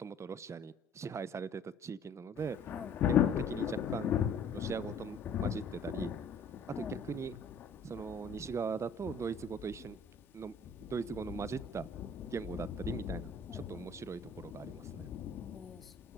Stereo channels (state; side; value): quieter; right; 3.1 dB